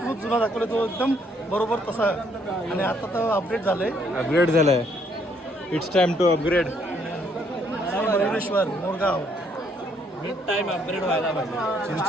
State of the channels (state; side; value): normal; both; correlation 0.68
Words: जुना दाखवला, तो एकदम बरोबर तसा. आणि आता तर अपडेट झालंय. अपग्रेड झालाय. It's time to upgrade. Moreshwar Morgaon with time upgrade व्हायला पाहिजे.